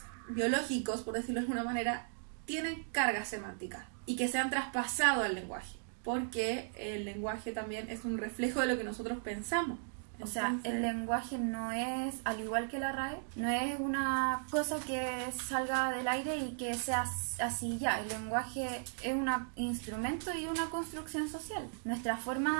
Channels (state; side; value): silent; left; digital silence